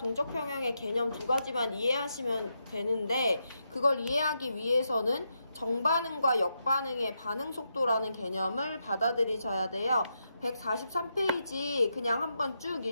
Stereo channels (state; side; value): inverted; both; correlation -0.83